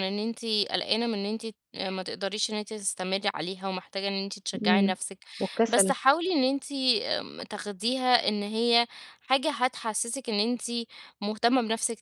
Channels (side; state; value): both; identical; correlation 1.00